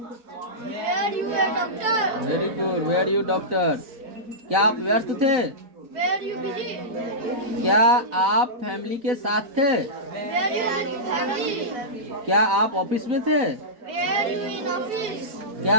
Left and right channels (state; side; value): late; left; 4.0 ms